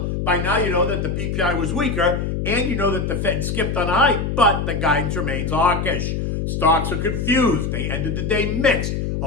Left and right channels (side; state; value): left; noise; hum, 2 dB below the sound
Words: by now you know that the PPI was weaker, and you know that the Fed skipped on a hike, but the guidance remains hawkish. Stocks are confused. They ended the day mixed,